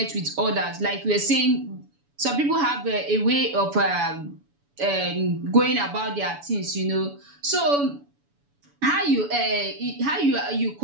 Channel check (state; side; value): late; left; 7.0 ms